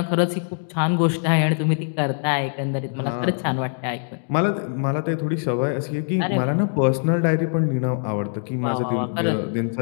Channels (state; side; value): silent; right; digital silence